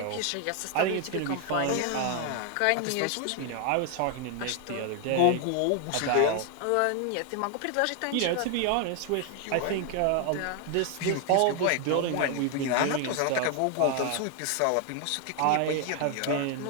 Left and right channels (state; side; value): different; both; correlation 0.00